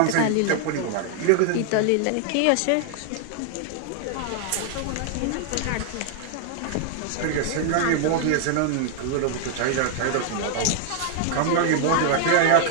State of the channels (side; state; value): both; different; correlation 0.00